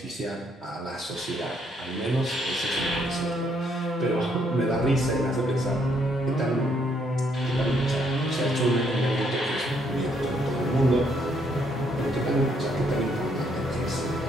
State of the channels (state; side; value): normal; both; correlation 0.71